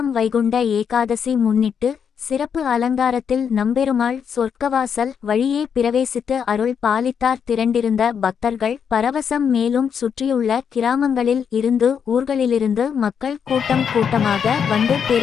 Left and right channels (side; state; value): right; quieter; 7.3 dB